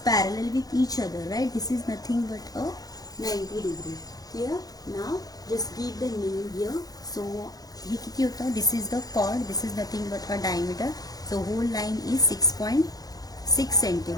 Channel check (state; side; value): late; right; 0.18 ms